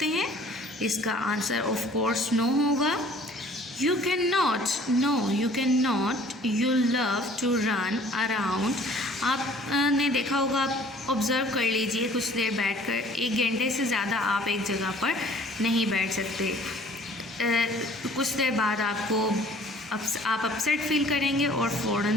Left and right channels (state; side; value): normal; both; correlation 0.53